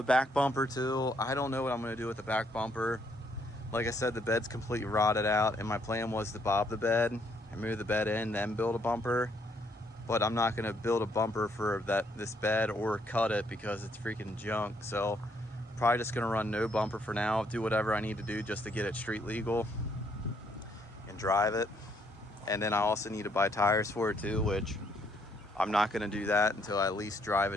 back bumper too. I don't know what I'm gonna do with the back bumper. like I said, the bed's completely rotted out, and my plan was to bob the bed and move the bed in, then build a bumper. But I'm not gonna build a bumper for this bed or cut it because it's freaking junk. So probably just gonna run no bumper for now, do whatever I need to do just to get it street legal and drive it. And then I also need to buy tires for it too, which I'm not gonna do that until I at least drive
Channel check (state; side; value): normal; both; correlation 0.70